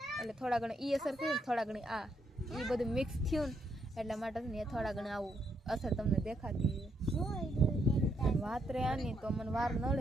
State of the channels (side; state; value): both; normal; correlation 0.76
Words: એટલે થોડા ઘણા એ અસર થયું થોડા ઘણી આ એ બધું મિક્સ થયું ને એટલા માટે ને એ થોડા ઘણા આવું અસર તમને દેખાતી વાત રે આની તો મને વાર ન